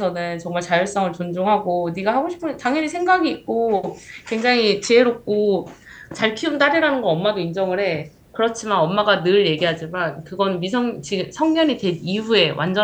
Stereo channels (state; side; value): identical; both; correlation 1.00